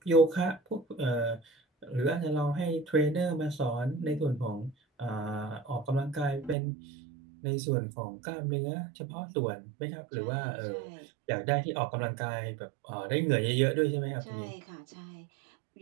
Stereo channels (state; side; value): drops out; left; at 6.6 s